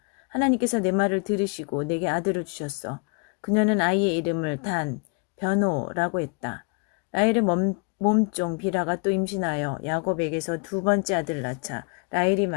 하나님께서 내 말을 들으시고 내게 아들을 주셨어. 그녀는 아이의 이름을 단, 변호라고 했다. 라헬의 몸종 비라가 또 임신하여 야곱에게서 2번째 아들을 낳자 라헬이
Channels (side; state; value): right; quieter; 34.1 dB